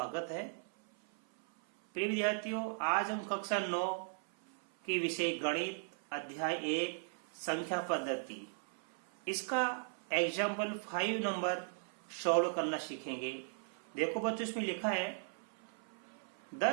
है। प्रिय विद्यार्थियों, आज हम कक्षा 9 के विषय गणित अध्याय 1 संख्या पद्धति इसका एग्जाम्पल 5 नंबर सॉल्व करना सीखेंगे। देखो बच्चों, इसमें लिखा है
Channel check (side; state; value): left; silent; 53 dB below the other